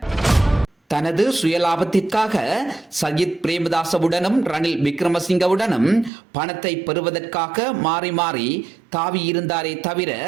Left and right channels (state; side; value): drops out; left; at 6.1 s